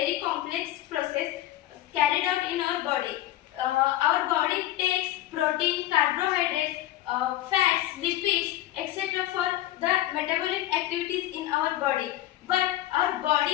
complex process carried out in our body. Our body takes protein, carbohydrates, fats, lipids, etc. for the metabolic activities in our body. But our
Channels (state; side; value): quieter; right; 14.5 dB